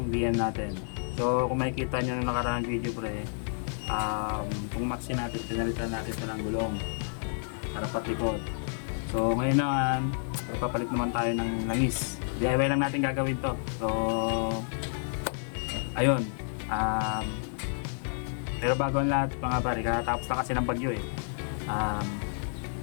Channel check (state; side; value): silent; right; digital silence